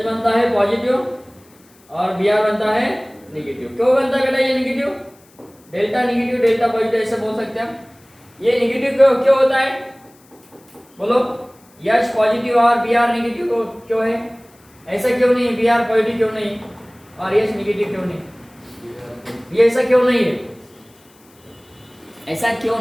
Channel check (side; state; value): left; noise; hiss, 30 dB below the sound